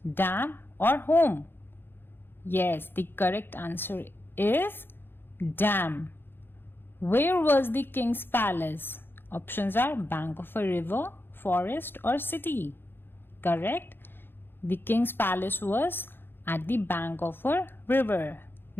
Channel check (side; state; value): right; late; 0.10 ms